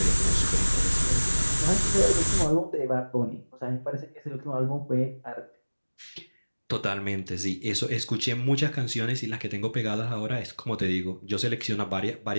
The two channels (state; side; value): inverted; both; correlation -1.00